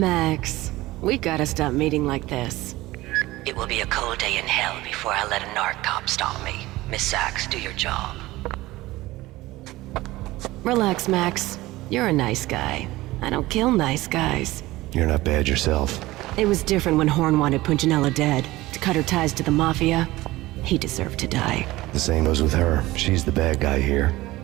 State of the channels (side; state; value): left; quieter; 18.4 dB